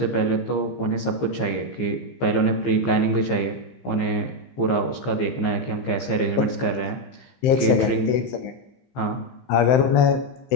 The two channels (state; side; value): late; right; 15 ms